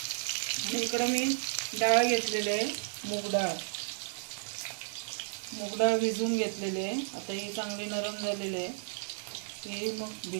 आणि इकडे मी डाळ घेतलेली आहे, मूग डाळ। मूग डाळ भिजवून घेतलेली आहे। आता ही चांगली नरम झालेली आहे, ही मग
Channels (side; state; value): left; silent; digital silence